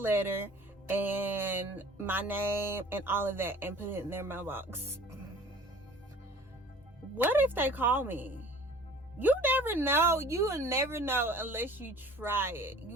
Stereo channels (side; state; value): both; normal; correlation 0.46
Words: and my name and all of that, and put it in their mailbox. What if they call me? You never know. You will never know unless you try it.